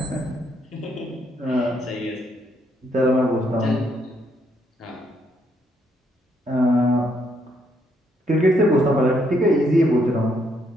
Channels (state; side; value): normal; both; correlation 0.73